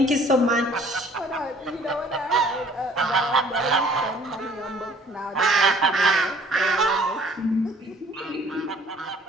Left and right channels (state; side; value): normal; both; correlation 0.55